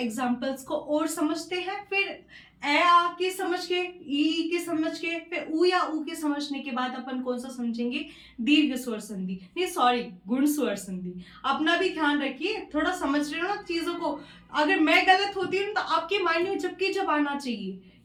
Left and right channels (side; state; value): both; identical; correlation 1.00